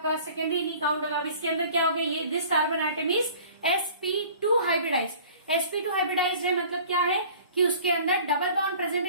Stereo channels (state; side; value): inverted; both; correlation -0.48